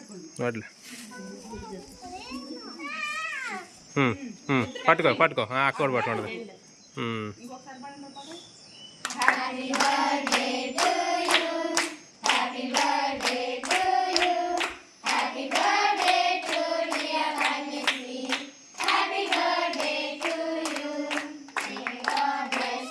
నోట్లే పట్టుకో పట్టుకో అక్క కూడా పట్టుకుంటుంది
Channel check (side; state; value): both; identical; correlation 1.00